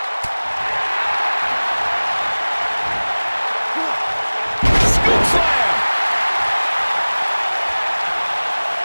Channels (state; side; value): inverted; both; correlation -1.00